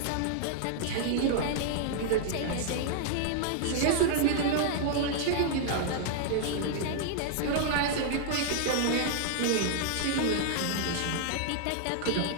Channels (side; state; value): both; different; correlation -0.01